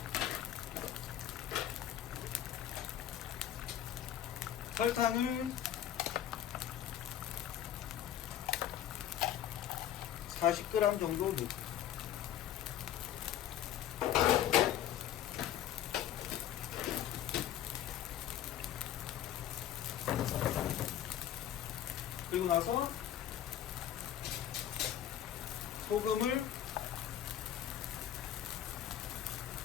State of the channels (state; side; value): quieter; right; 11.0 dB